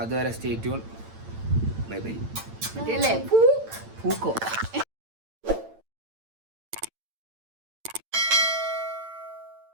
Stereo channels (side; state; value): left; late; 8.9 ms